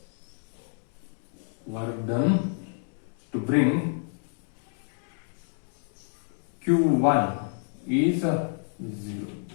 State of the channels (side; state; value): right; silent; 59 dB below the other